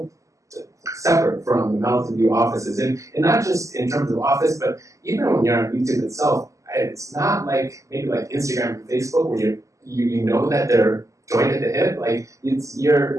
separate from the Mountain View offices. And not just in terms of office, but even when you're on YouTube itself, it's not like maybe like Instagram and Facebook where you know that they're joined at the hip. Like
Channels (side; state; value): left; late; 0.16 ms